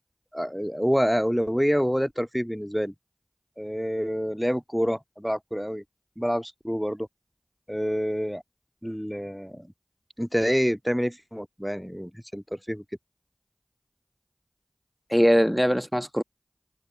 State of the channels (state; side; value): identical; both; correlation 1.00